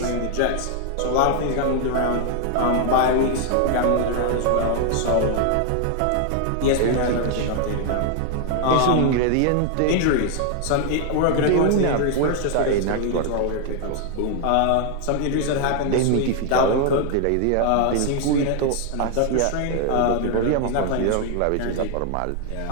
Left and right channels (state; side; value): different; both; correlation 0.00